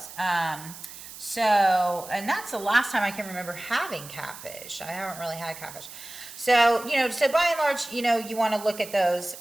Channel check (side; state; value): right; noise; hiss, 14 dB below the sound